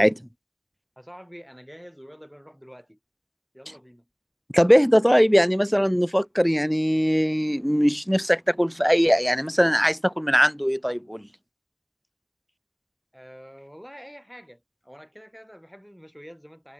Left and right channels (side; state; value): both; identical; correlation 1.00